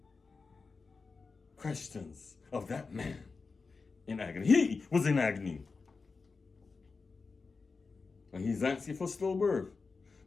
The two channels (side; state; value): right; quieter; 4.4 dB